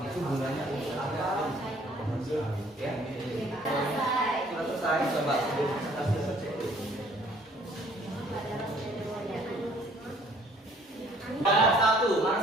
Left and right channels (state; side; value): normal; both; correlation 0.59